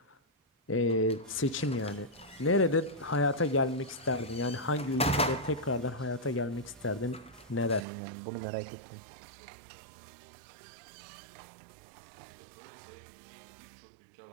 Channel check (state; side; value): drops out; left; at 7.9 s